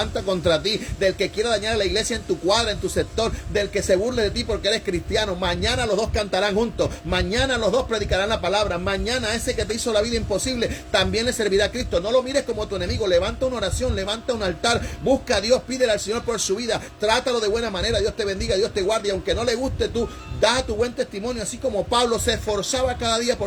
contra ti, del que quiera dañar a la iglesia en tu cuadra, en tu sector, del que se burle de ti porque eres cristiano. Mañana los dos cantarán juntos, mañana los dos predicarán la palabra, mañana ese que te hizo la vida imposible también le servirá a Cristo. No lo mires como tu enemigo. Levanta una oración, levanta un altar, busca a Dios, pídele al Señor por su vida, trátalo de buena manera. Dios te bendiga, Dios te guarde, y aunque no le guste, tú da tu buen testimonio, así como Pablo se esforzaba cada día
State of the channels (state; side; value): identical; both; correlation 1.00